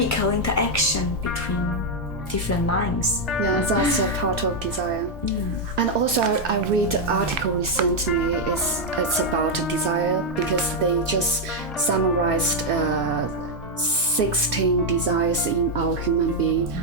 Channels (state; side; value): normal; both; correlation 0.01